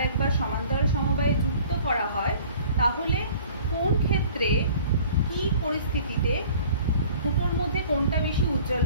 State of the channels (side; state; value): both; inverted; correlation -0.49